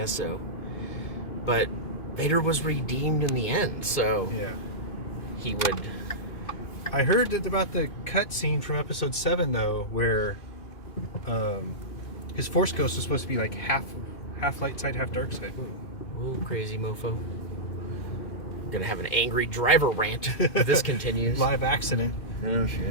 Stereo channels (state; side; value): late; right; 2.5 ms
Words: so. But Vader was redeemed in the end, so yeah, he would. I heard that about the cutscene from Episode 7 though, where his Force Ghost was supposed to be like half light side, half dark side. Whoa, crazy mofo. I'm gonna have an angry driver rant if this continues. Live accident. Oh